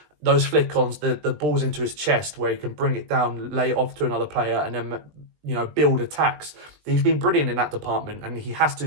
Those flick-ons, the ball's into his chest where he can bring it down, lay it off to another player, and then build attacks. He's been brilliant in that department, and he has to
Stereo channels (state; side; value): late; left; 20 ms